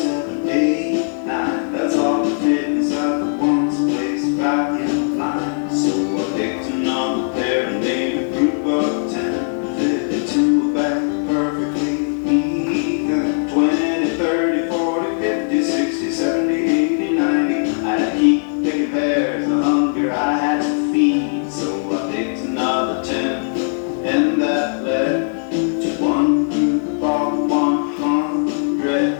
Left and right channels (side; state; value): right; silent; 57 dB below the other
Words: 7, 8, 9. That's all the fit inside the one's place back in line. So I picked another pair and made a group of 10. Fit into a bag perfectly even. 20, 30, 40, 50, 60, 70, 80, 90. I had to keep picking pears, the hunger I had to feed. So I picked another 10, and that led to 1 group of 100.